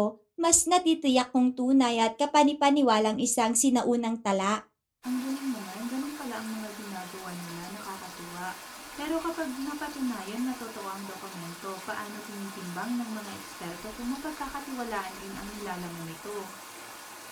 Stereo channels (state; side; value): identical; both; correlation 1.00